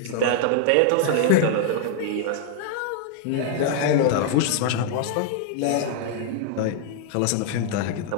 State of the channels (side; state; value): both; different; correlation -0.01